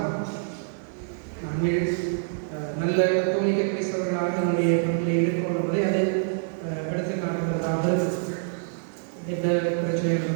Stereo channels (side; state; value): left; silent; digital silence